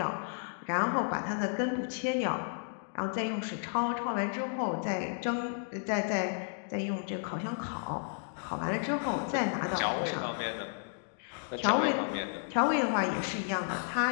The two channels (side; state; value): right; silent; digital silence